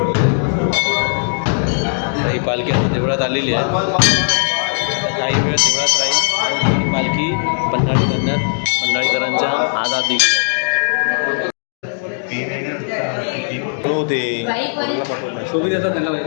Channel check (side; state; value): right; silent; digital silence